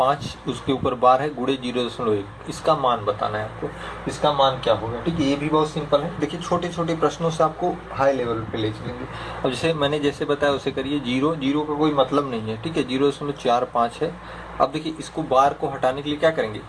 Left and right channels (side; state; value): both; identical; correlation 1.00